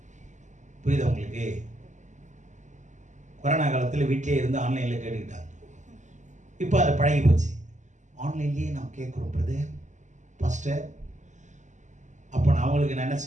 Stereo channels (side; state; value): left; late; 0.35 ms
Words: புரியுதா உங்களுக்கு? கொரோனா காலத்தில் வீட்டிலே இருந்து ஆன்லைனில் கேட்டுக்கிட்டாங்க. இப்போ அதை பழகி போச்சு. ஆன்லைன்லேயே நாம் கேட்குறோம் பிரதர், பாஸ்டர். அப்போ நான் அவங்களுக்கு நான் என்ன